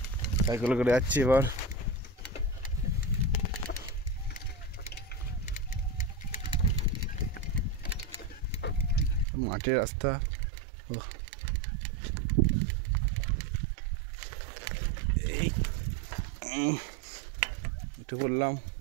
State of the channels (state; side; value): drops out; left; at 9.2 s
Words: সাইকেল করে যাচ্ছি এবার। মাঠের রাস্তা, একটু বললাম